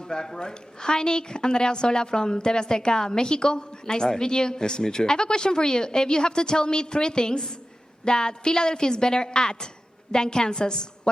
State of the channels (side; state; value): both; normal; correlation 0.94